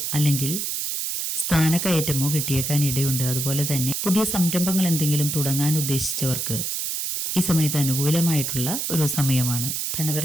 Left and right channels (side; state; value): right; noise; hiss, 2 dB below the sound